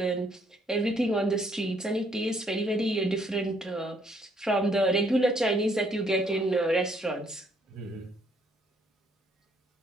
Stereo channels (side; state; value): both; normal; correlation 0.68